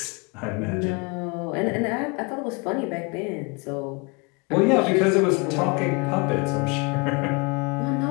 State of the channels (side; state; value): right; quieter; 29.3 dB